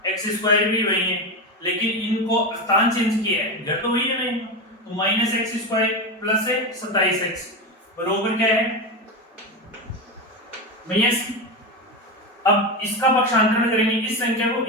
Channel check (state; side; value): normal; both; correlation 0.17